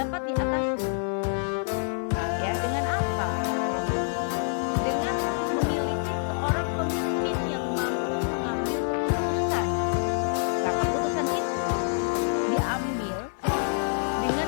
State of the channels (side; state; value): right; silent; digital silence